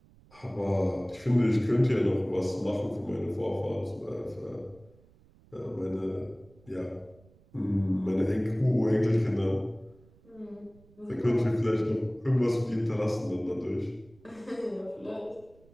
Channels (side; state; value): right; noise; rumble, 27 dB below the sound